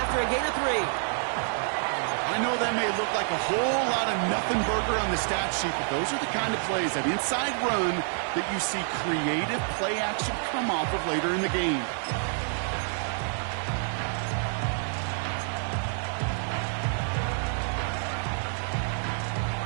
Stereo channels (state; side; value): silent; left; 59 dB below the other